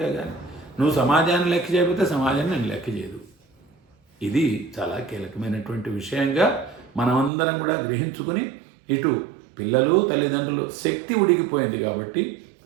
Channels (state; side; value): drops out; left; at 7.3 s